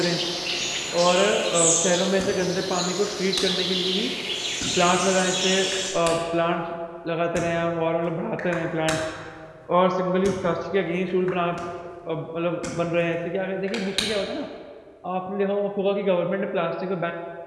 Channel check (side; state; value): both; identical; correlation 1.00